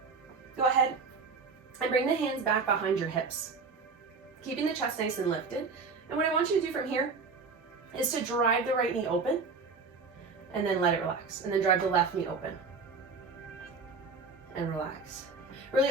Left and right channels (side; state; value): left; quieter; 4.6 dB